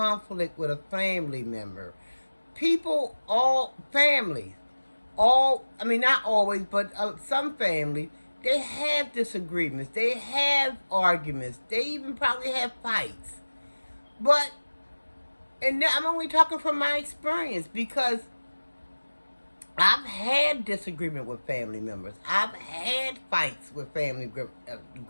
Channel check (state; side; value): inverted; both; correlation -1.00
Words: with a family member. All families, not always, but some families, They have disagreements. They have arguments. They even probably have fights. But, and I'm only talking from my experience, because I've had disagreement with family members. I've had fights with family.